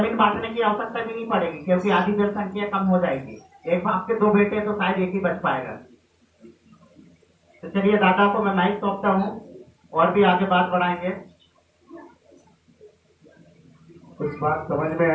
बांटने की आवश्यकता भी नहीं पड़ेगी क्योंकि आधी जनसंख्या कम हो जाएगी। एक बाप के 2 बेटे तो शायद एक ही बच पाएगा। तो चलिए दादा को मैं माइक सौंपता हूँ और भी आगे बात बढ़ाएंगे। कुछ बात समझ में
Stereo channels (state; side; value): identical; both; correlation 1.00